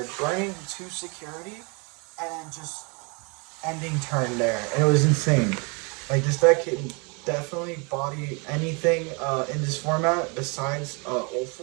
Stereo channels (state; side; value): quieter; left; 31.9 dB